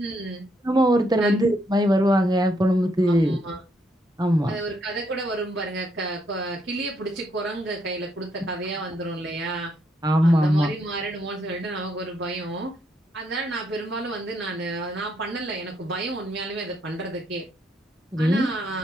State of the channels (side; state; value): both; normal; correlation 0.74